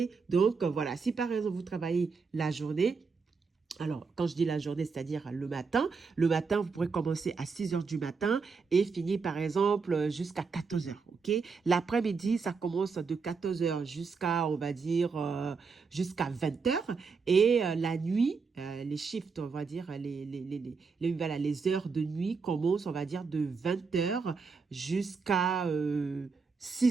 Donc, voilà, si par exemple vous travaillez la journée, alors, quand je dis la journée, c'est-à-dire le matin, vous pourrez commencer à 6 heures du matin et finir, par exemple, jusqu'à 14 heures, ok? L'après-midi, ça commence de 14 heures jusqu'à, on va dire, jusqu'à 20 heures. Et la nuit, les shifts, on va dire, voilà, les heures de nuit commencent, on va dire, de 20 heures jusqu'à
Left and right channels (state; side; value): quieter; left; 5.0 dB